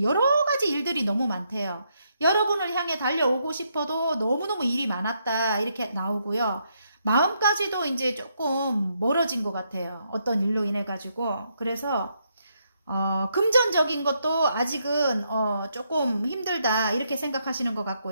여러 가지 일들이 너무 많대요. 여러분을 향해 달려오고 싶어도 너무너무 일이 많았다 이렇게 나오고요. 마음까지도 이제 조금 멀어진 것 같아요. 어떤 일로 인해 가지고. 그래서 금전적인 것도 아직은 조금 힘들다 이렇게 생각하시는 것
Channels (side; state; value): both; inverted; correlation -0.77